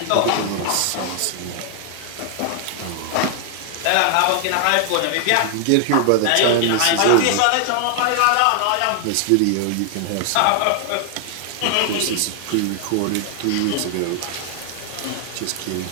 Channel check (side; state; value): both; different; correlation 0.00